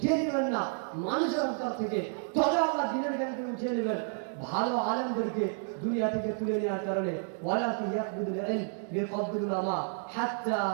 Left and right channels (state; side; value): silent; left; 57 dB below the other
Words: নেবেন না মানুষের অন্তর থেকে, তবে আল্লাহ দ্বীনের জ্ঞানকে উঠিয়ে নেবেন ভালো আলেমদেরকে দুনিয়া থেকে তুলে নেওয়ার কারণে। ওয়ালাকি ইয়াকবিদুল ইলম বিকবদিল উলামা